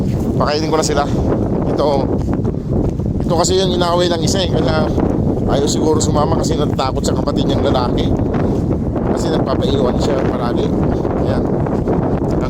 Pakainin ko na sila. Ito kasi yung inaaway ng isa eh. Kaya ayaw siguro sumama kasi natatakot sa kapatid niyang lalaki. Kasi nagpapaiwan siya palagi. Ayan.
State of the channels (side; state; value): both; identical; correlation 1.00